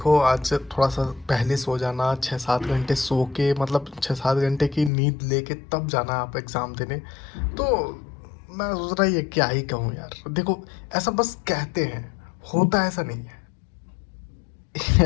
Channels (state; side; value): drops out; right; at 4.9 s